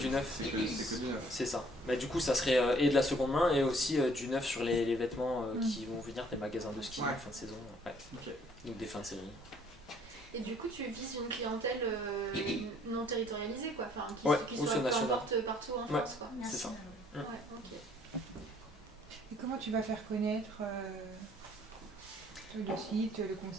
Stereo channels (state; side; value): normal; both; correlation 0.61